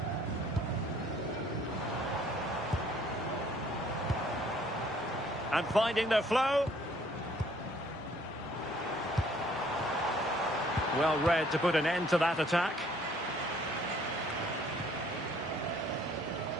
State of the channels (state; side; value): normal; both; correlation 0.60